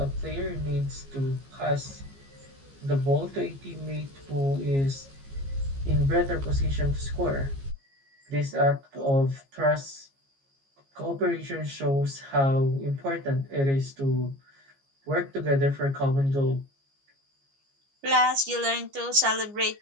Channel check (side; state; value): left; late; 15 ms